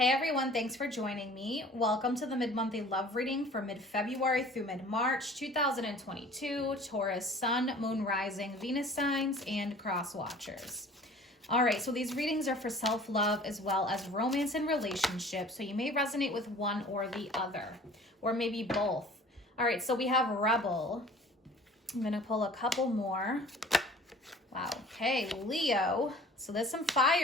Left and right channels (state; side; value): normal; both; correlation 0.48